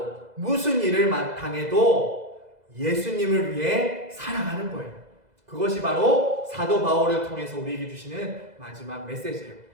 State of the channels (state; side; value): late; left; 2.0 ms